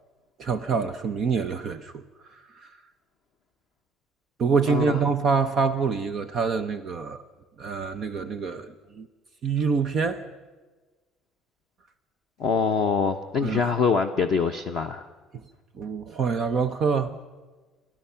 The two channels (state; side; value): normal; both; correlation 0.54